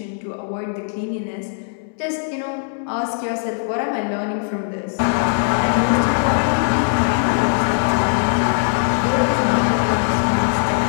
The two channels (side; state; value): right; silent; digital silence